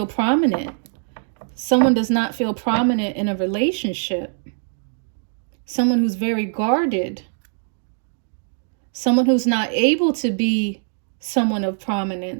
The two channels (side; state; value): left; silent; digital silence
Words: prominent. Someone does not feel prominent in a relationship. Someone who's very guarded. Someone who's not able to be someone of